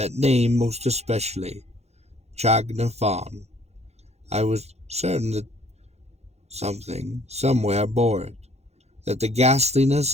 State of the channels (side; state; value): left; late; 0.31 ms